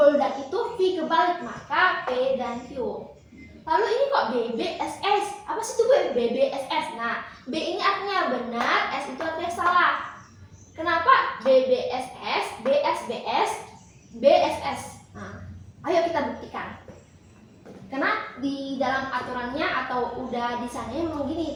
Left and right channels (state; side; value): identical; both; correlation 1.00